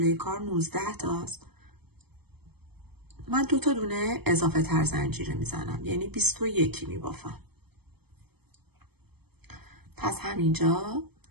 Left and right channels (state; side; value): late; left; 0.97 ms